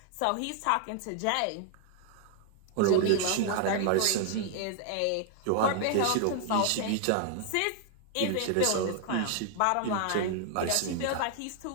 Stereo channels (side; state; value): both; different; correlation 0.00